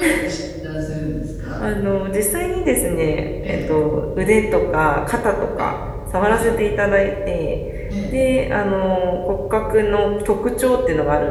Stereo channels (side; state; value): both; identical; correlation 1.00